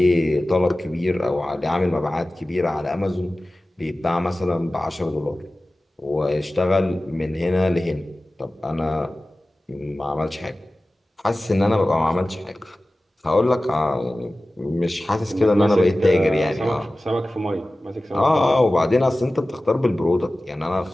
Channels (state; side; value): normal; both; correlation 0.96